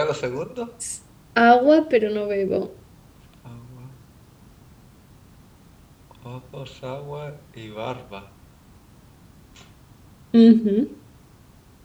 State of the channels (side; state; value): both; identical; correlation 1.00